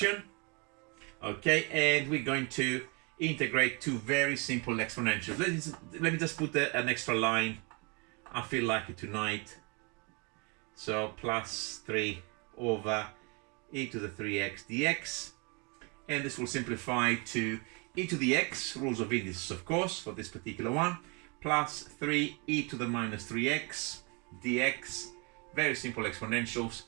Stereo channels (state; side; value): quieter; left; 31.4 dB